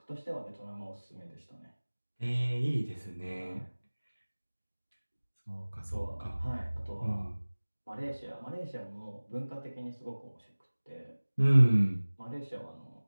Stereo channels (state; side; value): inverted; both; correlation -1.00